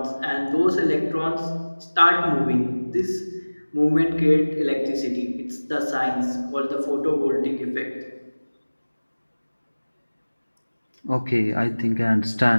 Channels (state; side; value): inverted; both; correlation -1.00